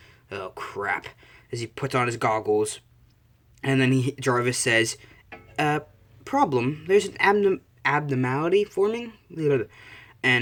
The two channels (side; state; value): both; identical; correlation 1.00